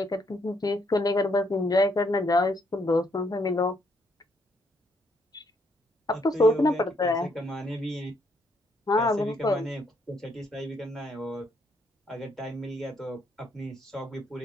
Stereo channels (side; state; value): both; normal; correlation 0.72